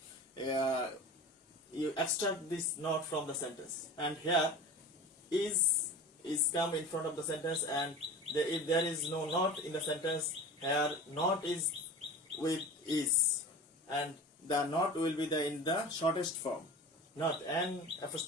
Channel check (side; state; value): both; normal; correlation 0.35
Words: extract this not from the sentence. And here is come in front of the sentence, and if there is no not in the sentence, here not is with is, and the not will be in the shortest form, not n